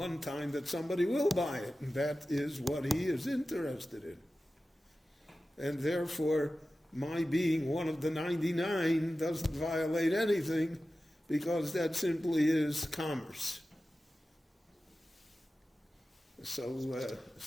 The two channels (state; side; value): normal; both; correlation 0.94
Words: time that somebody will buy it, and that is what he is interested in. And therefore, my being one of the 99 doesn't violate anything, because that simply is commerce. So